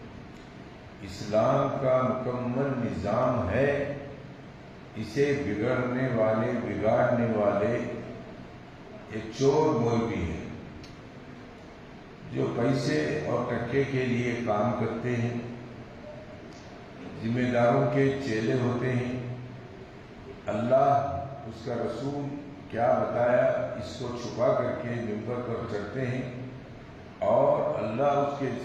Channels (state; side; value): identical; both; correlation 1.00